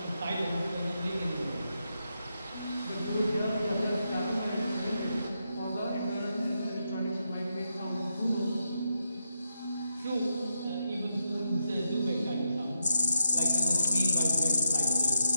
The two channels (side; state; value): both; inverted; correlation -0.85